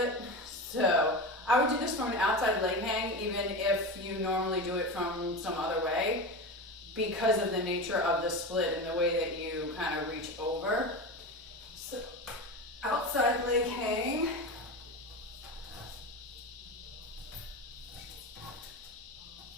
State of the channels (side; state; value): both; normal; correlation 0.24